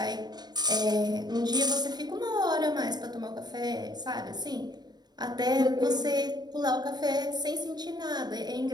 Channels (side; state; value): left; late; 0.20 ms